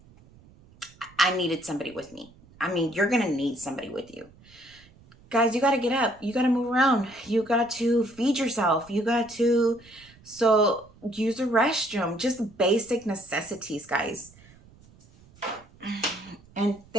I needed somebody with me. I mean, you're going to need somebody with you. Guys, you got to get up. You got to move around. You got to feed yourself. You got to, so use the restroom. Just basic necessities, guys. And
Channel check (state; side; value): noise; right; rumble, 26 dB below the sound